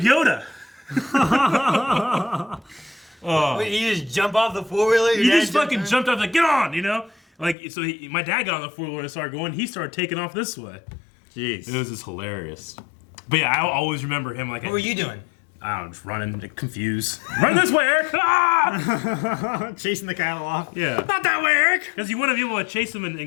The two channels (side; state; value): right; drops out; at 7.6 s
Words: Yoda. Wait, you just jump off the 4-wheeler? He just fucking jumped off, like, get on, you know? Like, so my dad got on the 4-wheeler and started going. He started taking off this way. Jeez. It was just hilarious. But yeah, I always remember him like. What were you doing? I don't know, just running, like, confused. Run this way, Eric! Ah! Chasing the cattle off. Yeah. Not that way, Eric! Because you want to be able to chase them